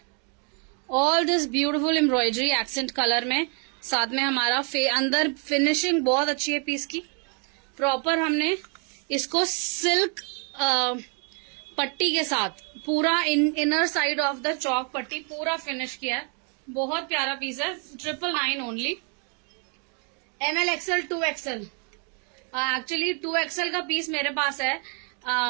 all this beautiful embroidery accent colour में, साथ में हमारा अंदर फिनिशिंग बहुत अच्छी है पीस की, प्रॉपर हमने इसको सिल्क पट्टी के साथ पूरा इनर साइड ऑफ द चौक पट्टी पूरा फिनिश किया है, बहुत प्यारा पीस है, 999 only, ML XL 2XL, actually 2XL का पीस मेरे पास है,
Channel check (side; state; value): left; quieter; 38.7 dB